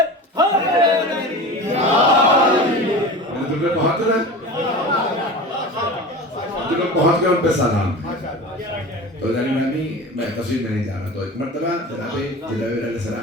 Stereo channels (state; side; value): normal; both; correlation 0.33